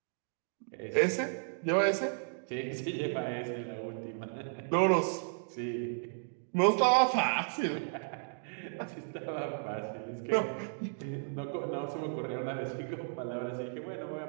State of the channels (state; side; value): silent; left; digital silence